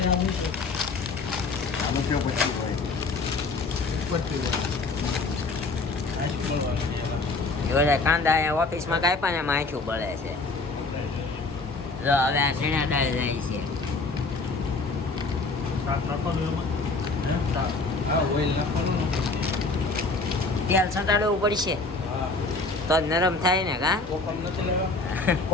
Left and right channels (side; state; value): right; quieter; 3.6 dB